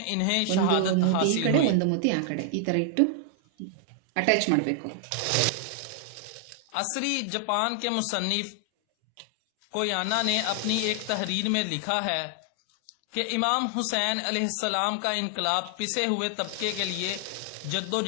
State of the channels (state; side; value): different; both; correlation 0.00